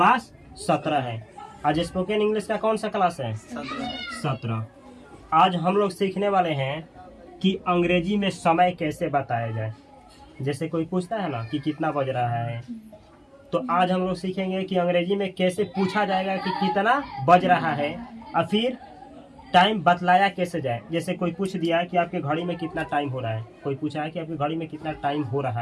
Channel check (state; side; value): identical; both; correlation 1.00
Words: 17 है। आज स्पोकन इंग्लिश का कौन सा क्लास है? 17। आज हम लोग सीखने वाले हैं कि अंग्रेजी में समय कैसे बताया जाए। जैसे कोई पूछता है ना कि कितना बज रहा है, तो आज हम लोग सीखेंगे कि अंग्रेजी में कैसे पूछा जाएगा कि कितना बज रहा है, और फिर टाइम बतलाया कैसे जाए। जैसे कोई पूछ दिया कि आपके घड़ी में कितना टाइम हो रहा है, कोई पूछा है कि आपकी घड़ी में कितना टाइम हो रहा